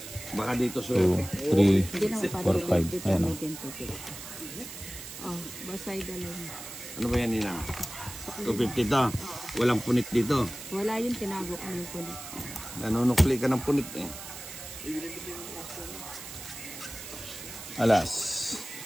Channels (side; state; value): right; noise; hiss, 11 dB below the sound